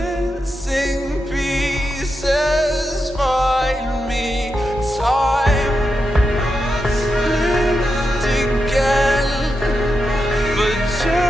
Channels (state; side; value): normal; both; correlation 0.87